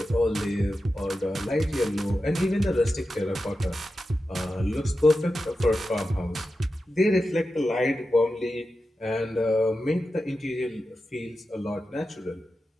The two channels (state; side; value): normal; both; correlation 0.91